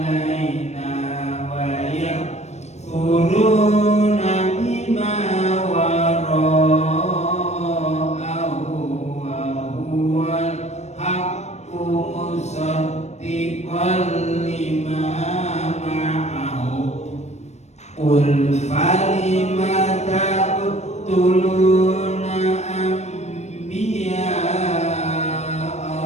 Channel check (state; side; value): late; right; 0.32 ms